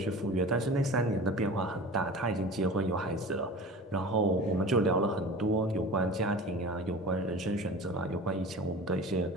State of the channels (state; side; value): normal; both; correlation 0.37